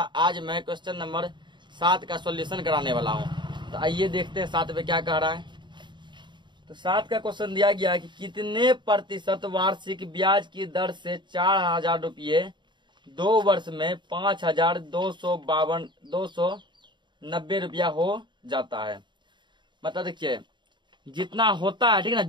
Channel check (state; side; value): late; left; 0.22 ms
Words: मैं क्वेश्चन नंबर 7 का सॉल्यूशन कराने वाला हूं। तो आइए देखते हैं 7 पे क्या कह रहा है। तो 7 का क्वेश्चन दिया गया कि कितने प्रतिशत वार्षिक ब्याज की दर से 4,000 रुपये 2 वर्ष में 5,290 रुपया हो जाता है। मतलब देखिए, जितना होता है, ठीक ना,